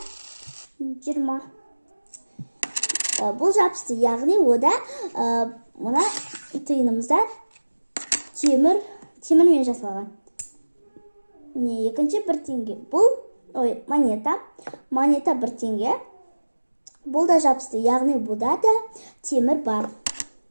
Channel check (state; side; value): inverted; both; correlation -1.00